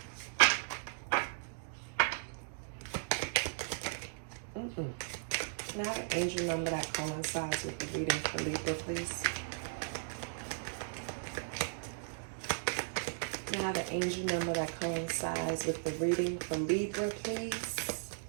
Can I have an angel number that coincides with the reading for Libra, please? Can I have an angel number that coincides with the reading for Libra, please?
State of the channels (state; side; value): silent; left; digital silence